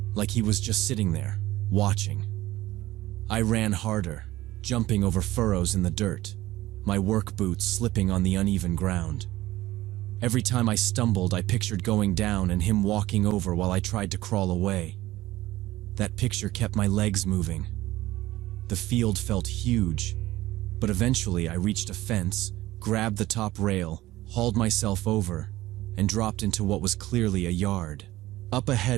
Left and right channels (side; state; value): left; quieter; 16.7 dB